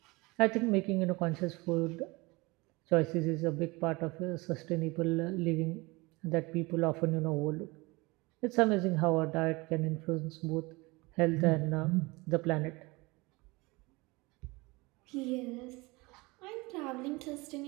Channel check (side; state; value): left; quieter; 24.2 dB